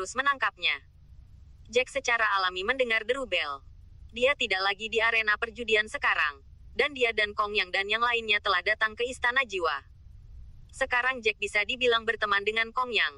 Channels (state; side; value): identical; both; correlation 1.00